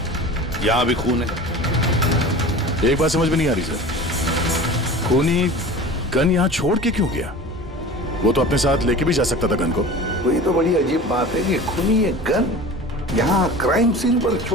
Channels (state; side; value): normal; both; correlation 0.37